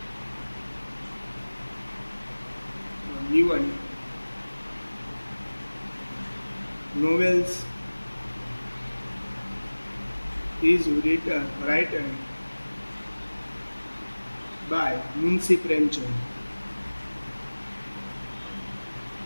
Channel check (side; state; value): both; inverted; correlation -1.00